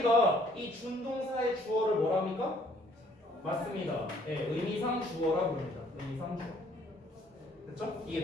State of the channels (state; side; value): normal; both; correlation 0.62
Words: 이 준동사의 주어를 뭐라 합니까? 맞습니다. 네, 의미상 주어라 부릅니다. 의미상 주어. 됐죠?